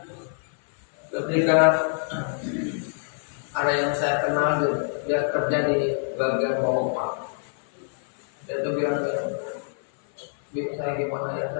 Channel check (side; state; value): right; silent; 58 dB below the other